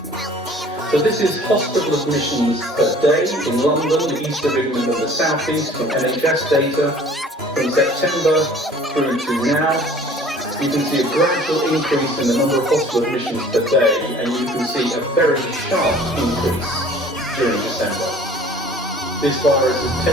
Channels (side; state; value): both; normal; correlation 0.50